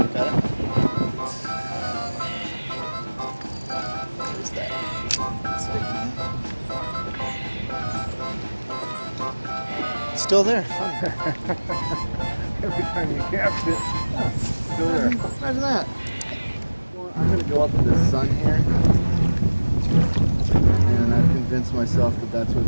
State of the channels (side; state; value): both; inverted; correlation -1.00